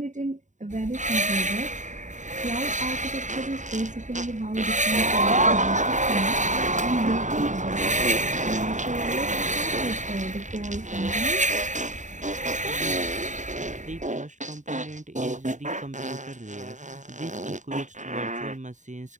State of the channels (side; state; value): left; late; 0.36 ms